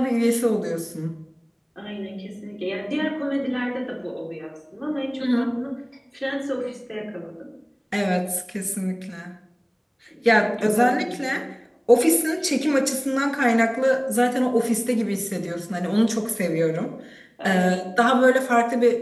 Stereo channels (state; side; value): identical; both; correlation 1.00